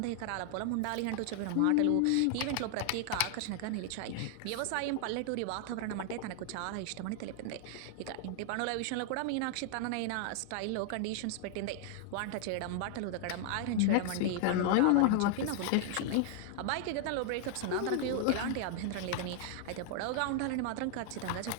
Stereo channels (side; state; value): both; different; correlation 0.00